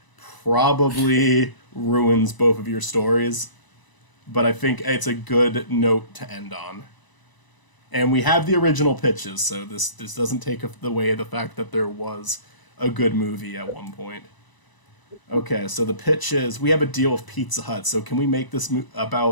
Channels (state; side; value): late; right; 1.0 ms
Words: probably ruins both of your stories. But I think it's a good note to end on. And we have the original pitches, so this doesn't take away the fact that there was a good movie at one point. Okay, so the pitch is we have a deal with Pizza Hut. So can we make this